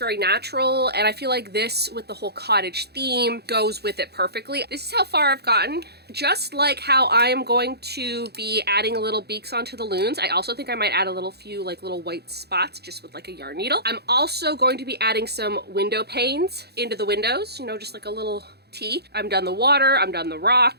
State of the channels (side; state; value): left; late; 0.47 ms